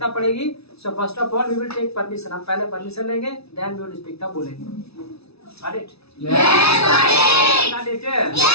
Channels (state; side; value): late; right; 0.78 ms